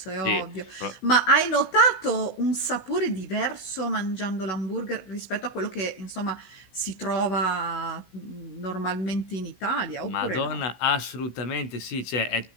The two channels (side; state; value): right; late; 16 ms